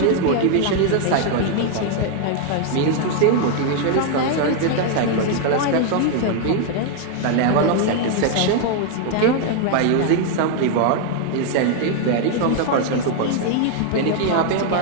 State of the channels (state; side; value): different; both; correlation 0.00